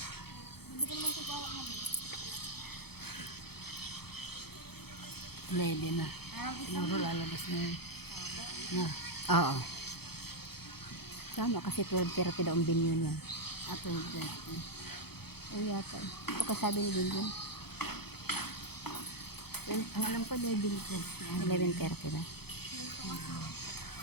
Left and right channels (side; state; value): right; late; 0.96 ms